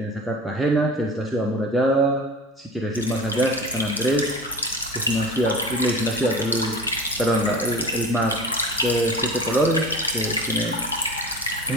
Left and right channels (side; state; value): both; normal; correlation 0.34